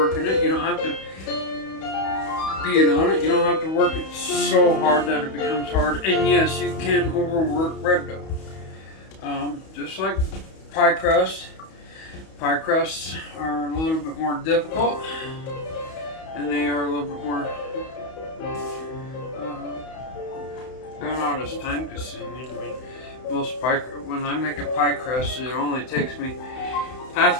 it. You don't have to being on it. You don't have to work it so hard that it becomes hard. And yes, you can overwork bread dough. Just like pie crust. Pie crusts are a little bit more difficult, and they are a little bit more they're not as time consuming. I mean, when I make a pie crust, it only takes me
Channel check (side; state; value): right; late; 31 ms